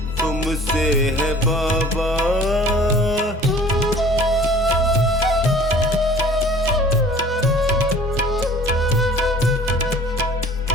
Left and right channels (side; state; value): both; normal; correlation 0.48